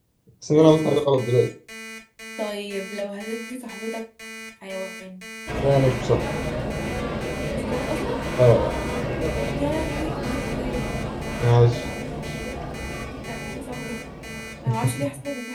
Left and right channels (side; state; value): both; identical; correlation 1.00